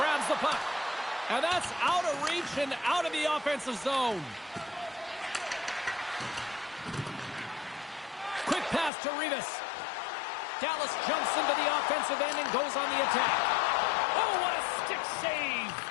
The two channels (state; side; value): drops out; right; at 8.9 s